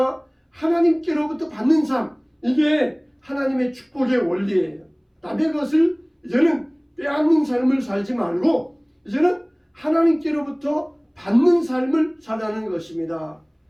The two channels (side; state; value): both; identical; correlation 1.00